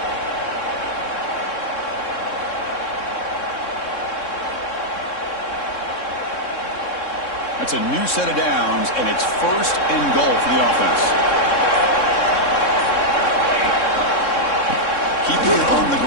That's a new set of downs, and it's 1st and goal for the offense. Keeping it on the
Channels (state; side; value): late; right; 3.6 ms